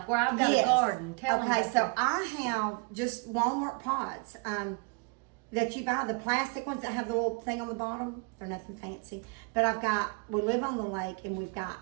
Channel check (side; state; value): left; quieter; 31.9 dB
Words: where I've got a garden. Tell them. Okay, so I have just Walmart pots that you buy, the plastic ones that have the little thing on the bottom. They're nothing fancy. But we live on the lake, and we've